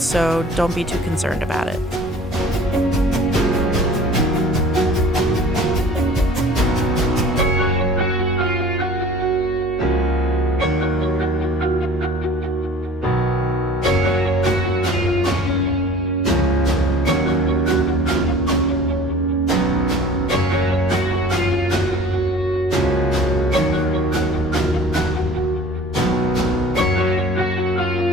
so don't be too concerned about it.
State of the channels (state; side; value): normal; both; correlation 0.46